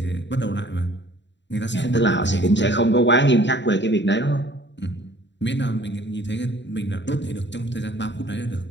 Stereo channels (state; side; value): late; right; 0.52 ms